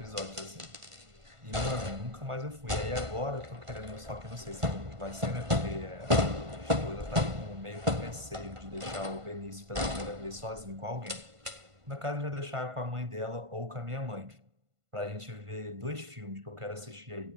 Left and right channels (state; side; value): late; left; 1.5 ms